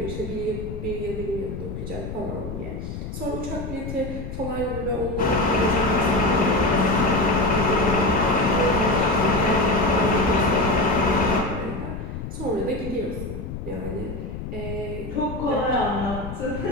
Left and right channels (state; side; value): noise; left; rumble, 8 dB below the sound